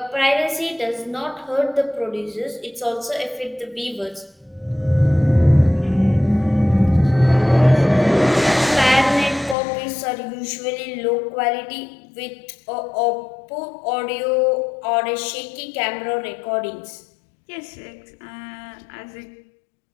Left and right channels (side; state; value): right; drops out; at 9.6 s